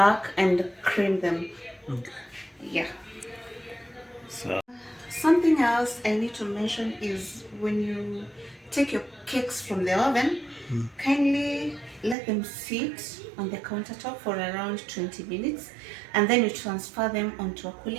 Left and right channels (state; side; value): drops out; left; at 12.2 s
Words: and cream them. Yeah. So Something else I need to mention is when you take your cakes from the oven, kindly let them sit on the countertop for around 20 minutes, and then you transfer them onto a